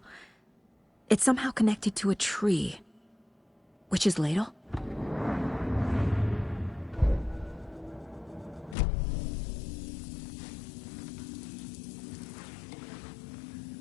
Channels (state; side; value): drops out; right; at 8.8 s